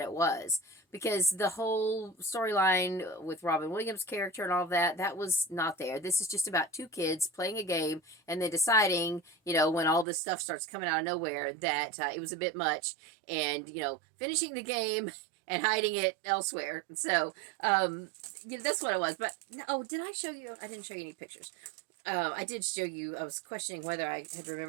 was. Because the whole storyline with Robin Williams' character and all that was not there. This is just about two kids playing a game and then deciding, when all this stuff starts coming out of nowhere, that it was a bit much. And, finishing the game and hiding it elsewhere. So, that's what it was. But, did I show you? I didn't show you any pictures. I did show you, I was questioning whether I had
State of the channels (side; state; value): left; drops out; at 10.1 s